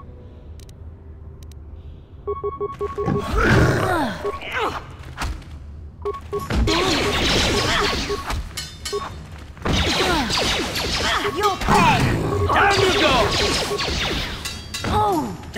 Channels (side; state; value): both; identical; correlation 1.00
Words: You'll pay! Down you go! Oh!